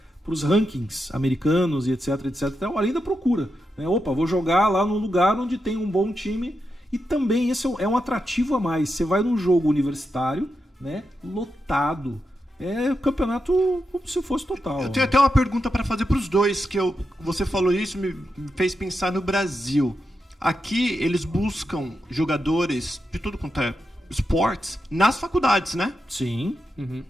para os rankings americanos e etc, etc. Então, além da procura, né? Vou jogar lá num lugar onde tem um bom time. E também esse é um atrativo a mais. Você vai num jogo universitário, né, lotado. É campeonato como se fosse total. Eu tenho até uma pergunta para fazer para os dois, que você falou isso, me fez pensar no Brasil. Aqui eles buscam jogadores de tudo quanto é esportes nas faculdades, né? Sim.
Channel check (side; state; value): both; normal; correlation 0.87